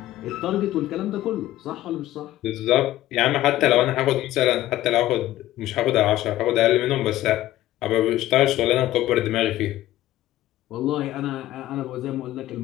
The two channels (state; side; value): quieter; right; 14.7 dB